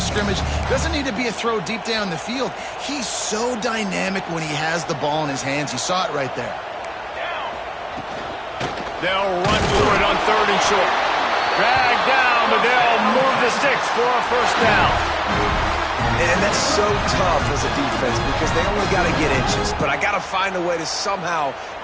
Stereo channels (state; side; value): identical; both; correlation 1.00